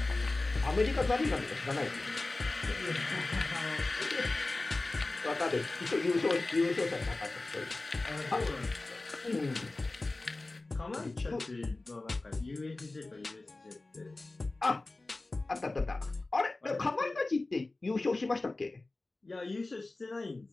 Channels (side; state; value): right; quieter; 3.1 dB